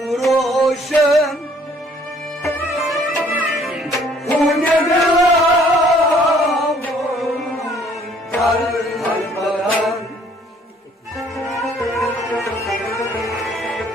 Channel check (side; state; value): both; normal; correlation 0.60